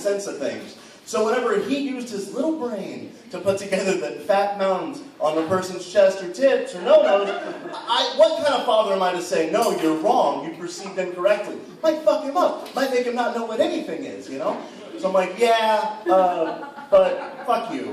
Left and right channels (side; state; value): both; identical; correlation 1.00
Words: of things. So whenever he used his little brain to put together the fat mountains on the person's chest or tits or no-nos, what kind of father am I to say, no, you're wrong, you perceived incorrectly? Might fuck him up. Might make him not know what anything is, you know? So I'm like, yeah, but fuck